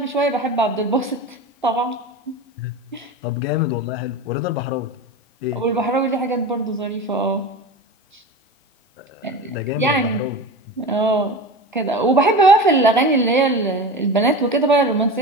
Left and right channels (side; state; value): both; normal; correlation 0.29